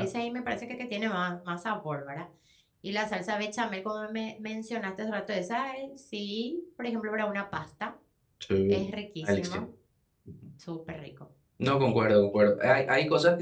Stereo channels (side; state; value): both; identical; correlation 1.00